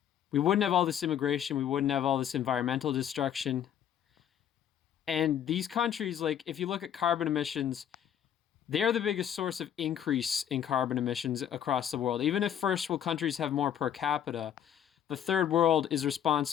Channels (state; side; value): quieter; right; 9.7 dB